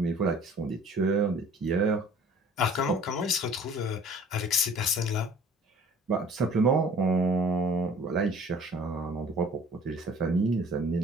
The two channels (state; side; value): normal; both; correlation 0.50